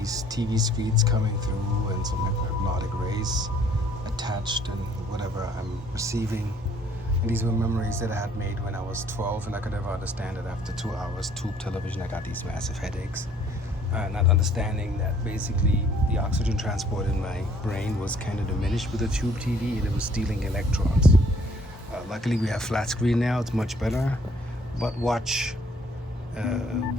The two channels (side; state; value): both; normal; correlation 0.60